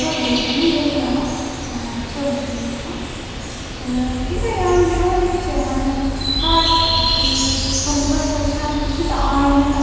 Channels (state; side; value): identical; both; correlation 1.00